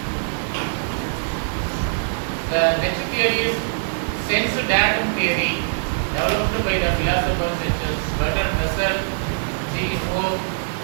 The next theory is sense datum theory, developed by the philosophers such as Bertrand Russell, G. Moore,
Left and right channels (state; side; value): silent; left; 64 dB below the other